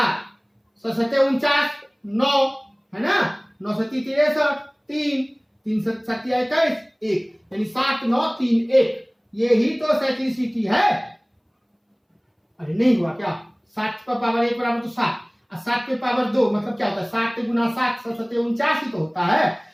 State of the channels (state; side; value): identical; both; correlation 1.00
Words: 7 49, 9 है ना, 9 7 63, 3 3 7 21, 1 यानी 7 9 3 1। ये ही तो साइक्लिसिटी है। अरे नहीं हुआ क्या? 7 पर पावर 1 बराबर तो 7, और 7 पे पावर 2 मतलब क्या होता है? 7 गुना 7 7 49 ही तो होता है,